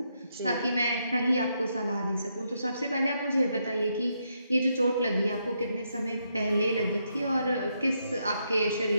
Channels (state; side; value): inverted; both; correlation -0.79